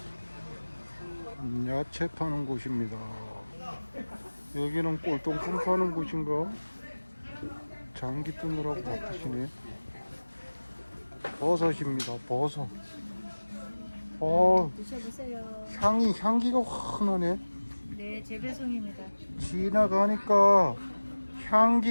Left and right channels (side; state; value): both; inverted; correlation -1.00